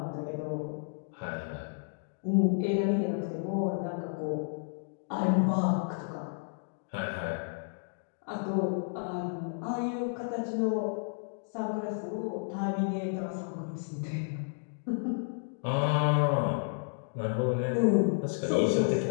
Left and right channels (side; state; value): right; silent; digital silence